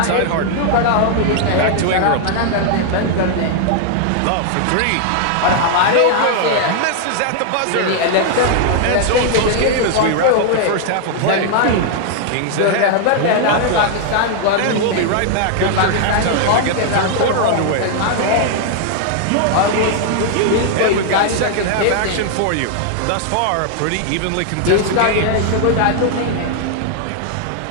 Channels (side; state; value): both; different; correlation 0.00